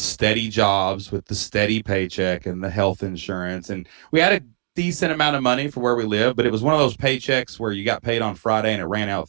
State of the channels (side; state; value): left; silent; 57 dB below the other